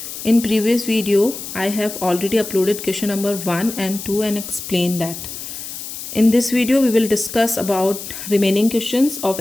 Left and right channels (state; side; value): noise; left; hiss, 9 dB below the sound